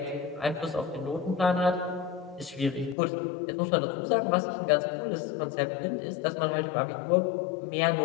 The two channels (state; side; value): drops out; right; at 3.0 s